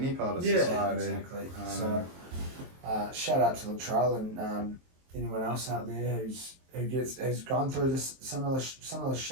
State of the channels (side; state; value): left; late; 23 ms